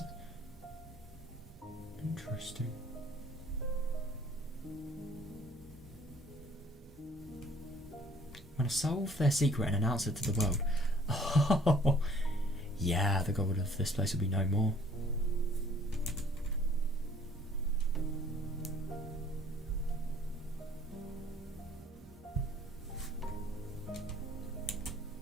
Interesting. Want to solve their secret and announce it to the world. Oh, yeah, the god of this place will be no more.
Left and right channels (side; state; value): both; normal; correlation 0.57